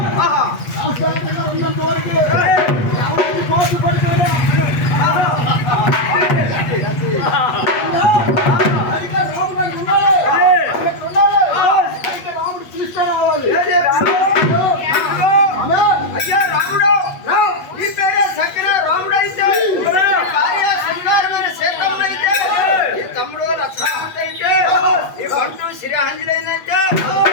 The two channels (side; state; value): right; late; 8.4 ms